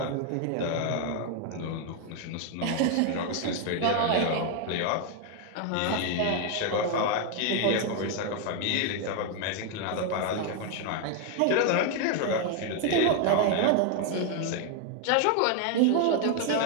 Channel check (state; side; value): different; both; correlation 0.01